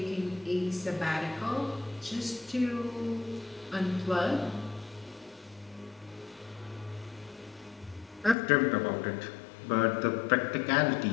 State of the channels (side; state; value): right; drops out; at 8.3 s